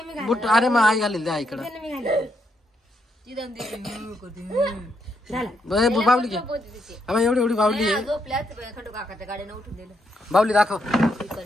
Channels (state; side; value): normal; both; correlation 0.78